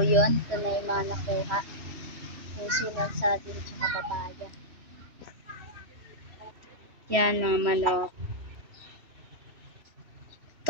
ito na yung mga nakuha. Puso ng saging tsaka papaya. Yan mga manok.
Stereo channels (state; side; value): late; left; 3.1 ms